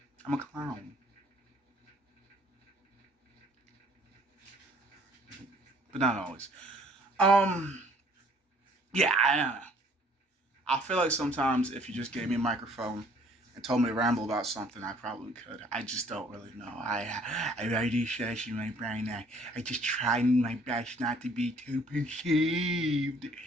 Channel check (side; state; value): both; normal; correlation 0.58